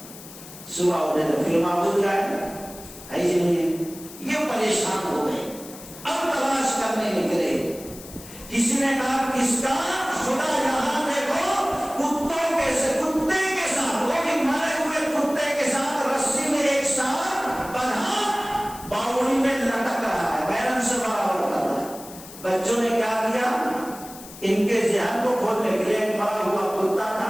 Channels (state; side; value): noise; left; hiss, 16 dB below the sound